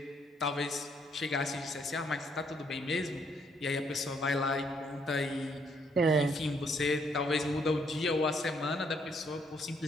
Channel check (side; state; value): both; normal; correlation 0.70